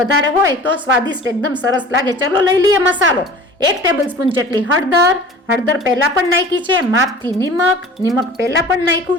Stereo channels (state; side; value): normal; both; correlation 0.42